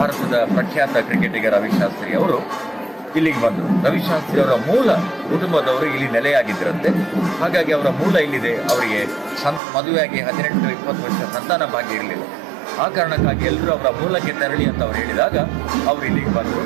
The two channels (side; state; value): left; drops out; at 9.6 s